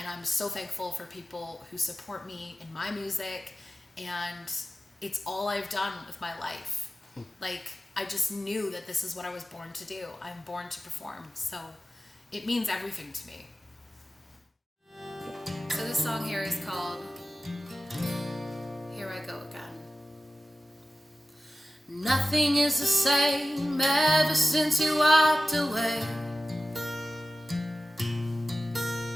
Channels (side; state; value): both; normal; correlation 0.95